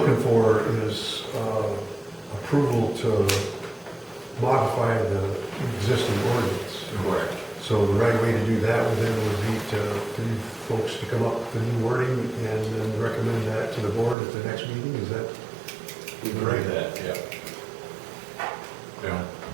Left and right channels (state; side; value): drops out; left; at 14.2 s